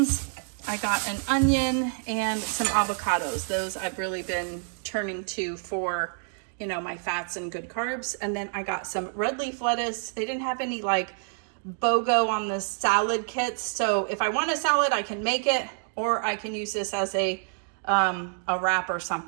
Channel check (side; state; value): left; silent; 60 dB below the other